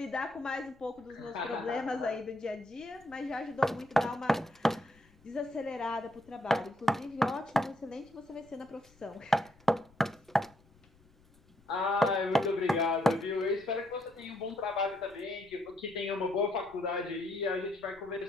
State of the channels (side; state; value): left; noise; rumble, 28 dB below the sound